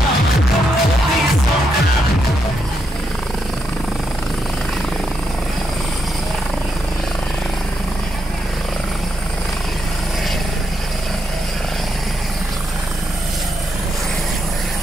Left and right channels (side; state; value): both; normal; correlation 0.81